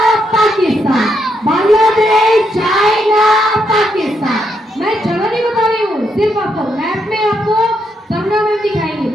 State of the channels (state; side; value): normal; both; correlation 0.78